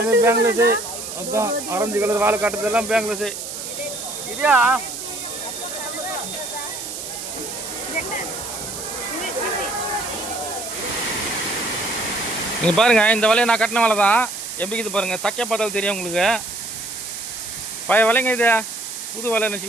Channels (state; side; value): noise; right; hiss, 8 dB below the sound